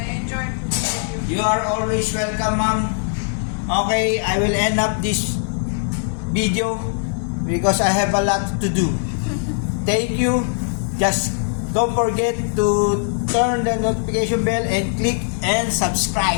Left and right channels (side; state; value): right; silent; 59 dB below the other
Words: enjoyed cooking with you. You are always welcome, ma'am. Okay, I will end up this video because I have a lot to do. Thank you. Just don't forget to turn the notification bell and click and